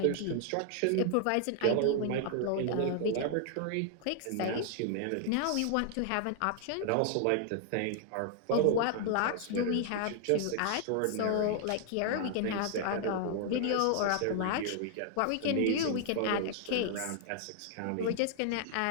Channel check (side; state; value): both; different; correlation 0.00